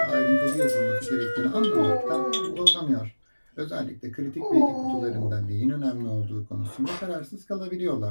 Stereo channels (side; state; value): both; inverted; correlation -1.00